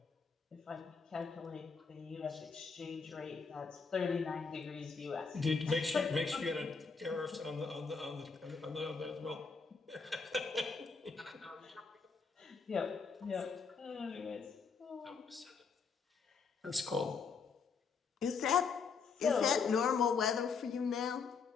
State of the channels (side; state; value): right; quieter; 5.2 dB